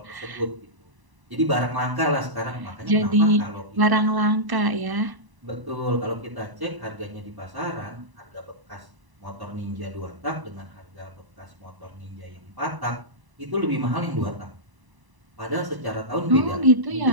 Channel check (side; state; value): left; late; 1.0 ms